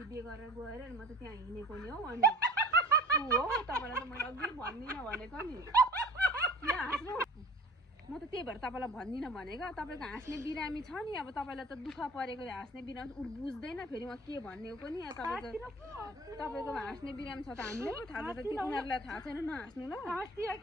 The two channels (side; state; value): both; normal; correlation 0.43